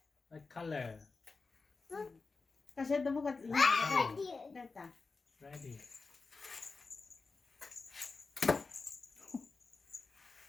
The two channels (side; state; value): right; quieter; 4.1 dB